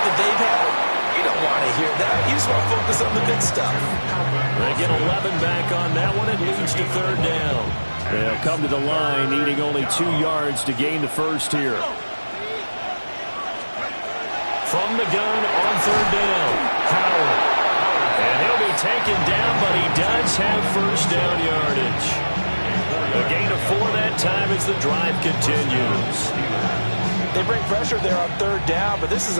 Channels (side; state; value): both; inverted; correlation -1.00